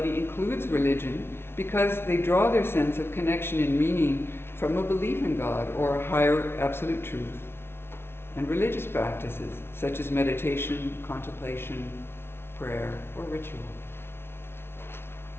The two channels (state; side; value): late; right; 0.12 ms